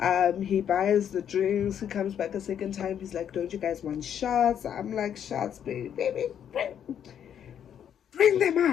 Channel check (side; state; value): right; quieter; 9.1 dB